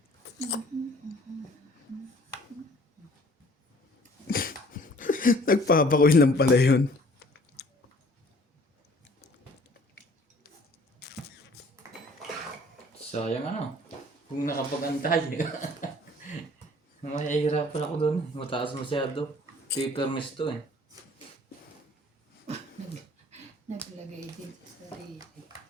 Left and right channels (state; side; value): normal; both; correlation 0.54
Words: Nagpapakuin lang pala yun. Sayang ano? Kung nakapag-antay. Mahihirapan ako doon. Mataas masyado. Paperless to eh. Naglagay din sa sarili.